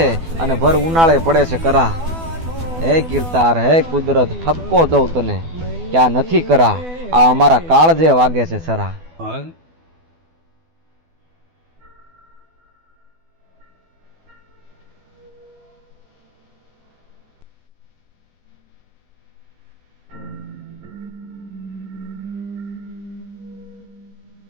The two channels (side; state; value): left; late; 12 ms